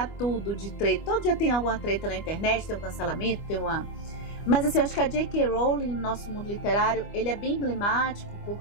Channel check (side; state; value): right; late; 25 ms